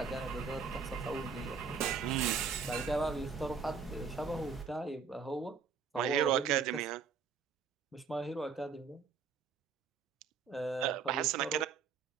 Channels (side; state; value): left; quieter; 5.7 dB